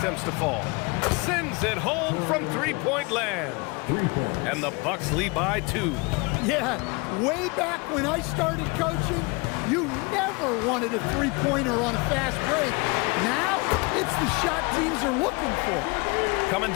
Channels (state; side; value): quieter; right; 27.8 dB